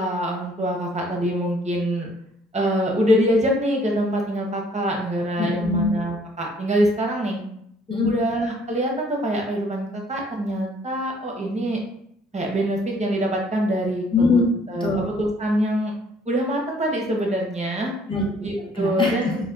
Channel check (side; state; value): both; normal; correlation 0.60